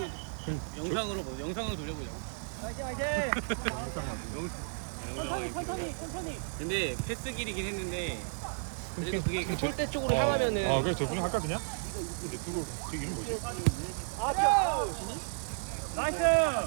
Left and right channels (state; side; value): silent; left; digital silence